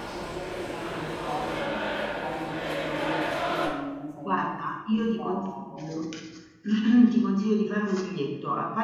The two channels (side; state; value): both; identical; correlation 1.00